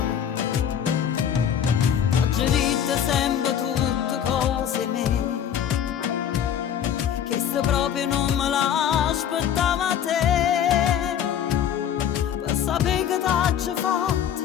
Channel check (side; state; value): right; quieter; 9.3 dB